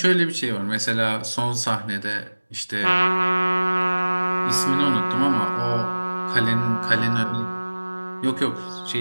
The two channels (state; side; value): inverted; both; correlation -1.00